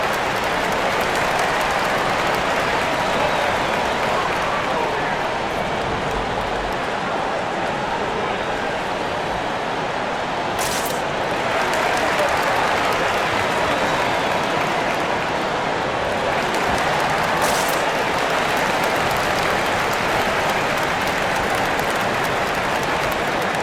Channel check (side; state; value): both; identical; correlation 1.00